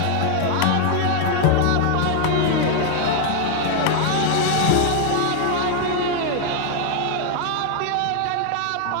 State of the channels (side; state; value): both; different; correlation 0.00